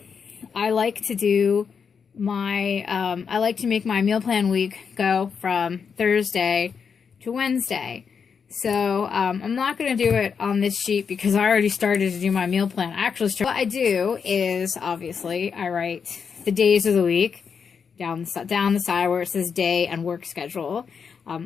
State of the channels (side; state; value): right; quieter; 6.3 dB